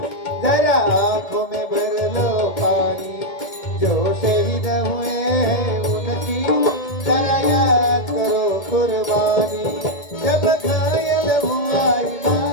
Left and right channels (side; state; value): right; late; 1.8 ms